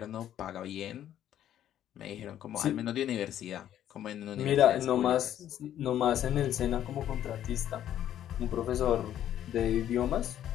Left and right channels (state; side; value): quieter; right; 11.2 dB